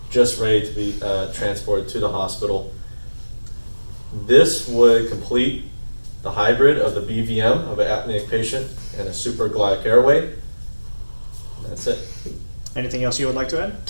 just ready to be transported to the hospital. This would complete the hybrid of the BVM of an apneic patient and a supraglottic airway. And that's it. Anything else you would like to add?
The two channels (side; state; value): both; inverted; correlation -1.00